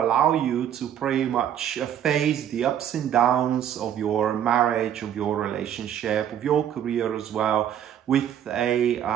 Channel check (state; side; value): quieter; left; 10.0 dB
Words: you to pretty much face the ups and downs of your marriage, of your relationship, of your career as well, with a